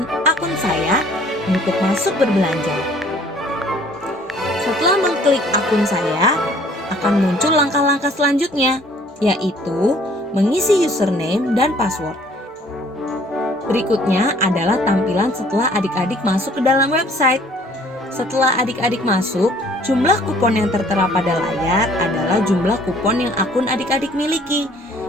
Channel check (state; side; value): normal; both; correlation 0.57